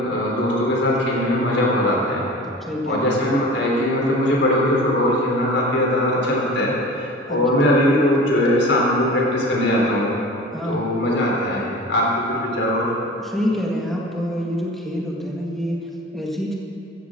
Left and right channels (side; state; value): both; normal; correlation 0.38